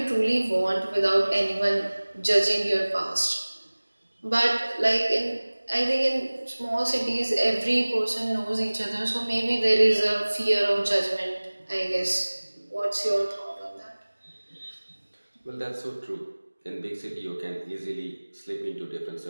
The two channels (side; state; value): both; inverted; correlation -1.00